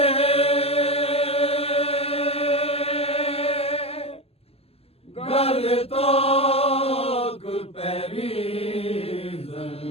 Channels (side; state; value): right; late; 0.29 ms